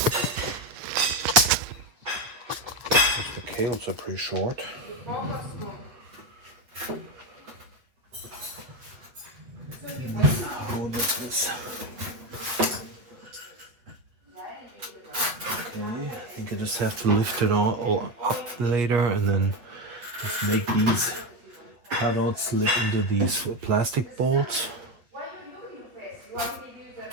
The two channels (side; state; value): left; late; 8.1 ms